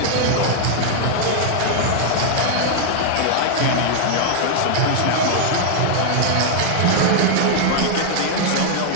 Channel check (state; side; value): different; both; correlation 0.00